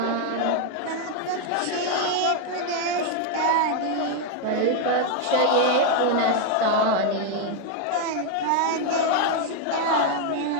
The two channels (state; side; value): different; both; correlation 0.01